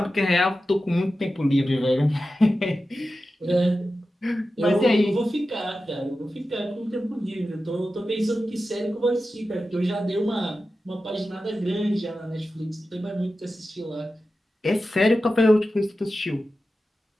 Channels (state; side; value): normal; both; correlation 0.93